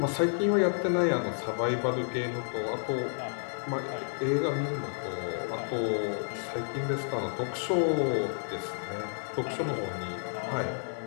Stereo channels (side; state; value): right; silent; 57 dB below the other